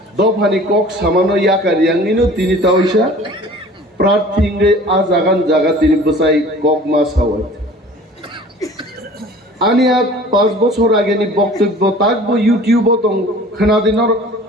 দফানি কক সামানো ইয়াকারিয়াঙ্গিনো তিনি তাওইসা প্রার্থীঙ্গে আ জাগান জাগা তিনি বসাই কক মাস হাওয়াই आनी 5 বছর আগেनि বক্তব্য তাকবো ইউটিউব দं खोनादिनर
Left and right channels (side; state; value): both; normal; correlation 0.46